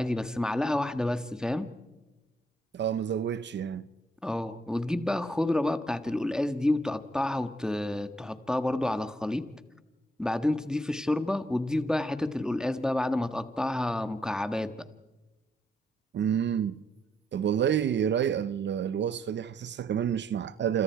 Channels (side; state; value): both; normal; correlation 0.73